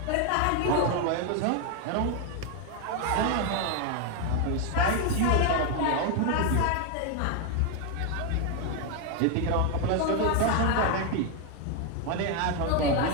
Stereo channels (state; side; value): different; both; correlation 0.01